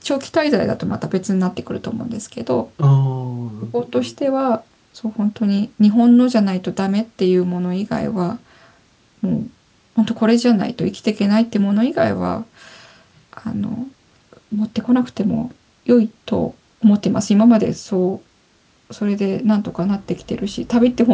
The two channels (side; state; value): both; identical; correlation 1.00